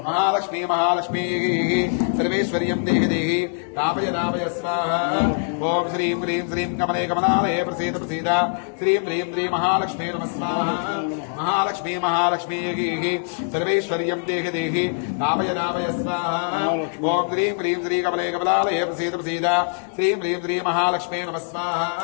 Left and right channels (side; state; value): right; silent; digital silence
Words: మహాలక్ష్మీ మహాలక్ష్మీ సర్వేశ్వర్యం దేహి దేహి రామయ రామయ స్వాహ. ఓం శ్రీం హ్రీం శ్రీం కమలే కమలాలయ ప్రసీద ప్రసీద శ్రీం హ్రీం శ్రీ మహాలక్ష్మీ నమస్కారం. మహాలక్ష్మీ మహాలక్ష్మీ సర్వేశ్వర్యం దేహి దేహి రామయ రామయ స్వాహ. ఓం హ్రీం హ్రీం శ్రీ కమలే కమలాలయ ప్రసీద ప్రసీద శ్రీం హ్రీం శ్రీ మహాలక్ష్మీ